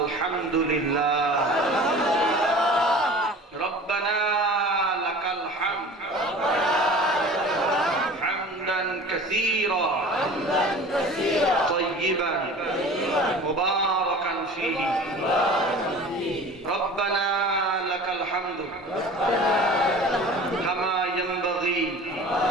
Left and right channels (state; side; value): normal; both; correlation 0.41